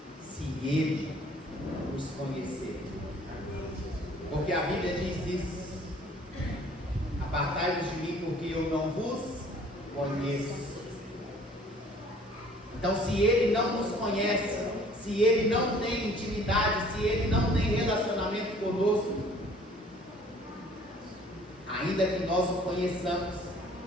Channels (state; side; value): normal; both; correlation 0.54